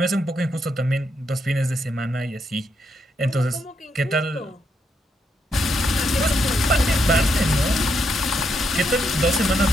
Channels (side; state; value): both; normal; correlation 0.79